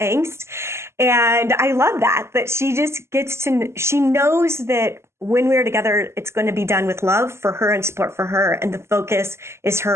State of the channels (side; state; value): left; late; 0.13 ms